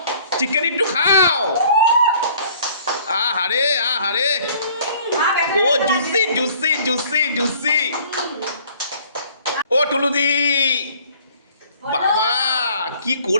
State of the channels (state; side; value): inverted; both; correlation -0.55